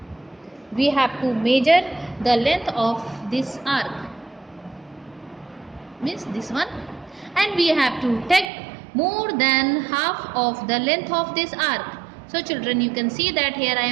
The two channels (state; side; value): drops out; left; at 8.5 s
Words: We have to measure the length of this arc, means this one, and we have to take more than half of the length of this arc. So children, you can see that here I